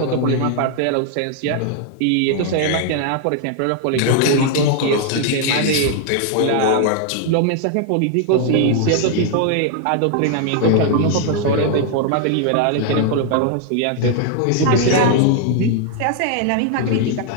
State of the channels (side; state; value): both; different; correlation 0.00